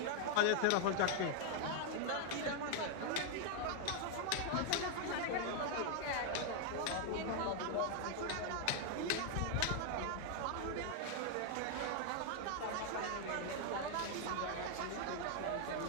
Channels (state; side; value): different; both; correlation 0.00